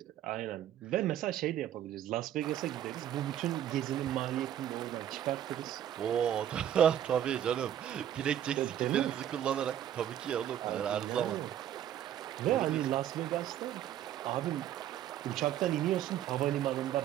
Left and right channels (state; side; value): quieter; left; 10.9 dB